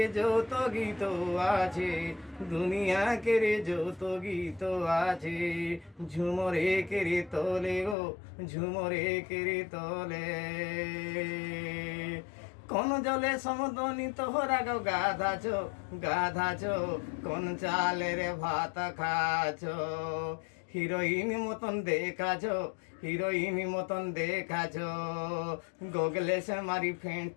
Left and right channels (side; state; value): right; drops out; at 8.0 s